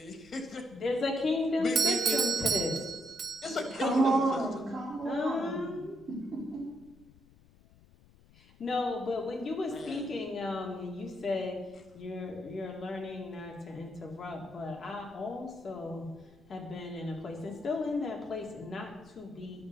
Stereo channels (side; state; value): left; noise; rumble, 26 dB below the sound